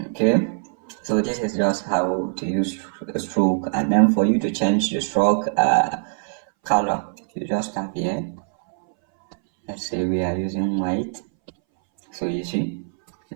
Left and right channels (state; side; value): silent; left; 62 dB below the other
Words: Okay, so this is just how to use a stroke. And then for you to change the stroke color, you just tap here. Let's say we are using white. So you see,